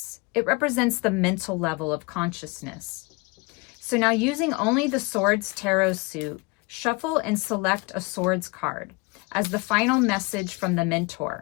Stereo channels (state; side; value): quieter; right; 26.8 dB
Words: It represents the mental level of consciousness. So now, using only the Swords Tarot suit, shuffle and select a Swords card as the final message from the